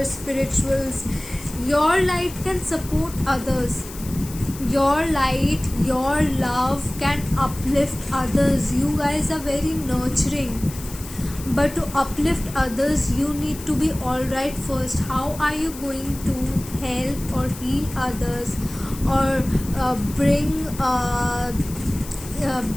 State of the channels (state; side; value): noise; left; hiss, 15 dB below the sound